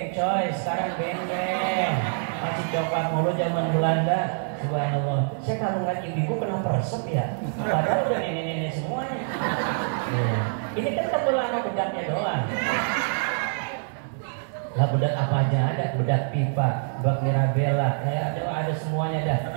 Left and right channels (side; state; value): left; silent; 56 dB below the other